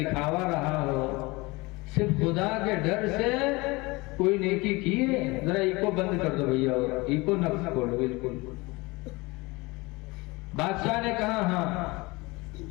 رہا ہو، صرف خدا کے ڈر سے کوئی نیکی کی ہے؟ ذرا ایکو بند کر دو بھیا، اور ایکو نہ کھولو بالکل. بادشاہ نے کہا ہاں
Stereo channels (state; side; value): quieter; right; 23.9 dB